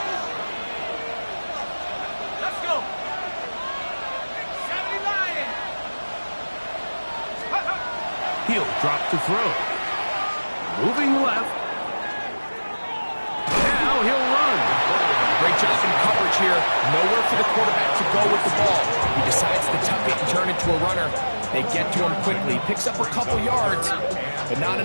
Let's go. 70 Lion. He'll drop to throw. Moving left. Now he'll run. Great job in coverage here. Nowhere for the quarterback to go with the ball. He decides to tuck it and turn into a runner. They get to him quickly. Picks up a couple yards, but not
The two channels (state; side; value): inverted; both; correlation -1.00